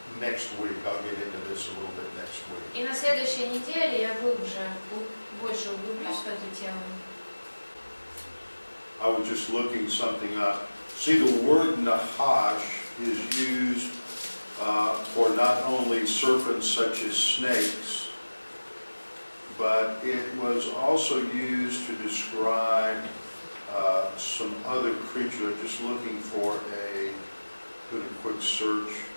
next week. I'll get into this a little bit next week. И на следующей неделе я больше углублюсь в эту тему. I was just looking something up. See, the word Nahash is used for not only serpents such as snakes, but it was also used to describe some other creatures. I'm just looking for doing a quick search.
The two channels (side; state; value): both; inverted; correlation -1.00